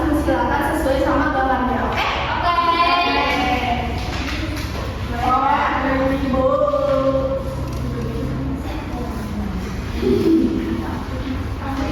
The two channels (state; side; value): identical; both; correlation 1.00